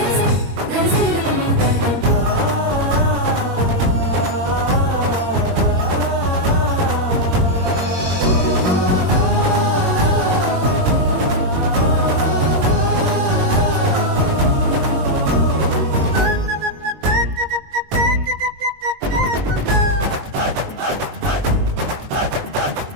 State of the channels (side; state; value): left; late; 21 ms